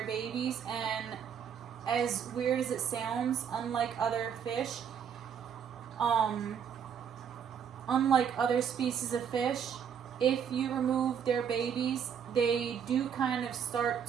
babies, and as weird as it sounds, unlike other fish, unlike other species of fish, if you remove their babies, they do kind of start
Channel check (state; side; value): quieter; left; 7.8 dB